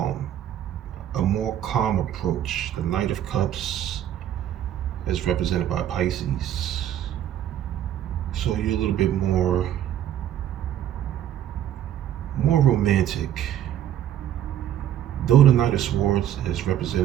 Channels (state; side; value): quieter; left; 11.1 dB